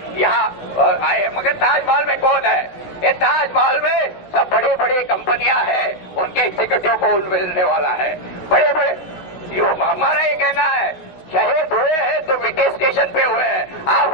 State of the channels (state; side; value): late; right; 16 ms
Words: यहाँ आए, मगर ताजमहल में कौन है? ये ताजमहल में सब बड़ी बड़ी कंपनियां हैं, उनके एग्जीक्यूटिव को मिलने वाला है। बड़े बड़े हमारा ये कहना है, शहीद हुए हैं तो विटे स्टेशन पे हुए हैं, आप